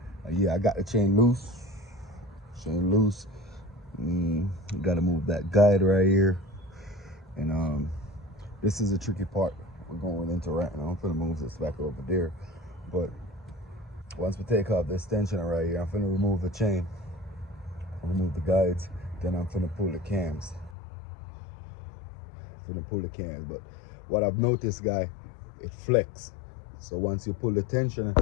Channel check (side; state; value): right; drops out; at 20.8 s